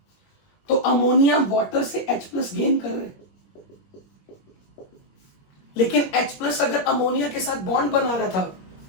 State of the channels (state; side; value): late; right; 21 ms